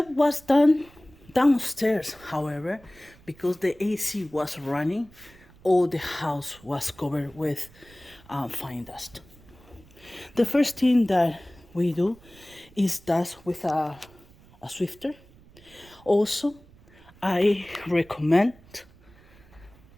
was done downstairs, however, because the AC was running, all the house was covered with fine dust. The first thing that we do is dust with a swifter. Also, I recommend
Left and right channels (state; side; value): noise; right; rumble, 25 dB below the sound